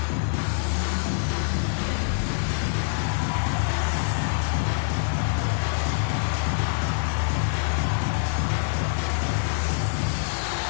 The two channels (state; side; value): silent; right; digital silence